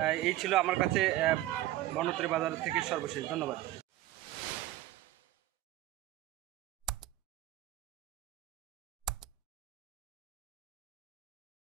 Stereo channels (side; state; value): left; quieter; 15.3 dB